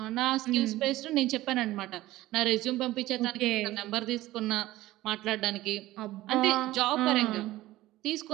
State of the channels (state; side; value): quieter; left; 16.7 dB